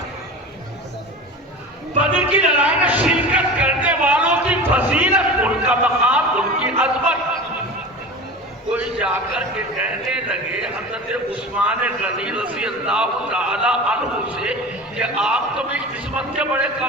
بدر کی لڑائی میں شرکت کرنے والوں کی فضیلت, ان کا مقام, ان کی عظمت. کوئی جا کر کے کہنے لگے حضرت عثمان غنی رضی اللہ تعالی عنہ سے کہ آپ تو بھی قسمت کے بڑے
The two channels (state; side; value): normal; both; correlation 0.33